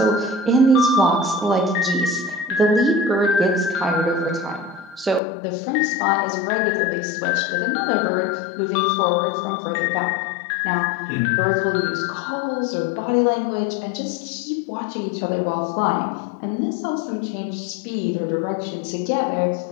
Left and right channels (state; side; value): drops out; right; at 5.2 s